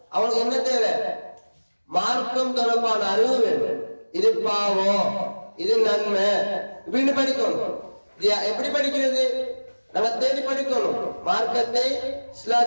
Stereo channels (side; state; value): both; inverted; correlation -1.00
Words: அவனுக்கு என்ன தேவை? மார்க்கம் தொடர்பான அறிவு வேண்டும். இது பாவம், இது நன்மை இப்படின்னு படிக்கணும். எப்படி படிக்கிறது? நம்ம தேடி படிக்கணும். மார்க்கத்தை,